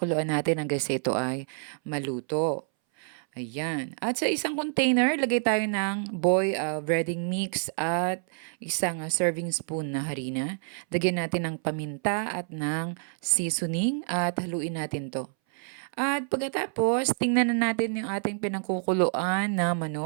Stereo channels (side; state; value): left; silent; 59 dB below the other